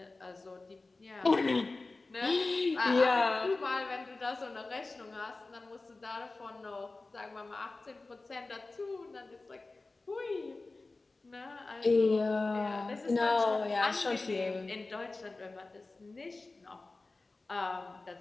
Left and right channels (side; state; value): right; quieter; 3.4 dB